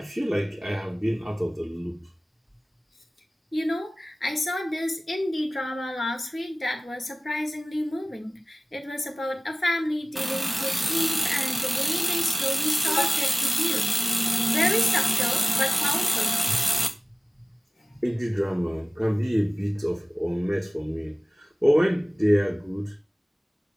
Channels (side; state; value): both; normal; correlation 0.96